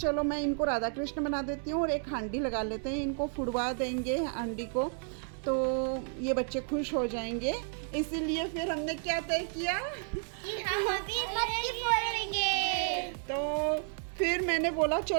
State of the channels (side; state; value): left; silent; 56 dB below the other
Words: मैं इनको राधा कृष्ण बना देती हूँ और एक हांडी लगा लेते हैं, इनको फुड़वा देंगे हांडी को तो ये बच्चे खुश हो जाएंगे। इसीलिए फिर हमने क्या तय किया कि हम अभी मटकी फोड़ेंगे। तो फिर मैंने बोला